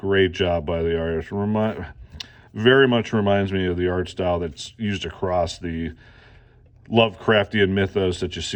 job by the artist. Very much reminds me of the art style that's used across the Lovecraftian mythos that you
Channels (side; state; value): both; identical; correlation 1.00